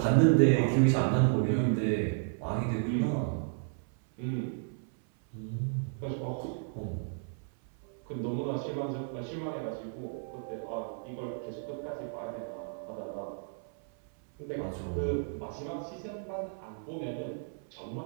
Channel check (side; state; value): left; silent; 56 dB below the other